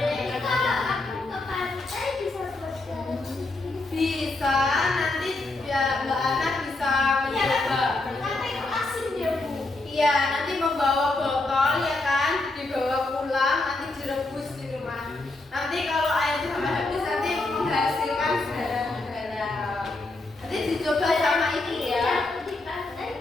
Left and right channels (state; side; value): quieter; right; 3.0 dB